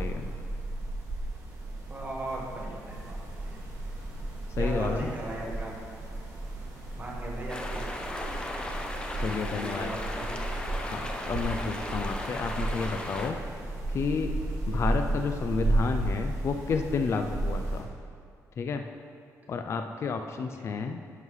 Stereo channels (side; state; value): both; normal; correlation 0.80